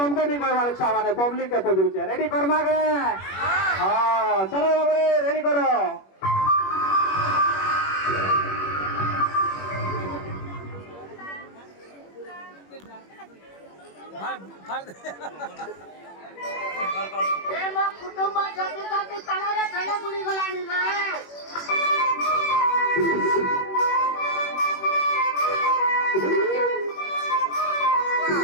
नहीं कहवार इच्छा माने पब्लिक के पहुंच रुचे रेडी करमा के हां चलो बाबू रेडी करो ए म कुटुंब जति जति तलरे धले बुडी गलानी ना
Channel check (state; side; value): late; right; 21 ms